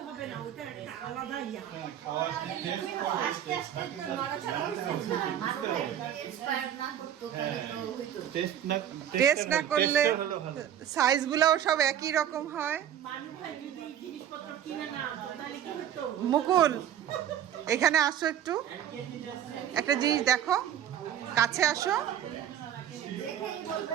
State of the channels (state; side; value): quieter; left; 10.3 dB